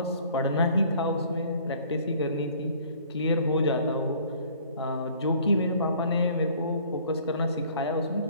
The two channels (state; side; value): inverted; both; correlation -0.55